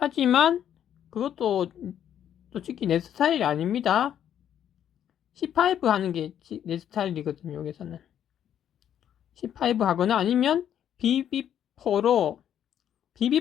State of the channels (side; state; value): right; quieter; 9.9 dB